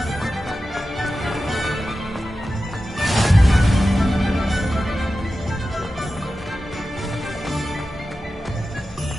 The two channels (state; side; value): normal; both; correlation 0.93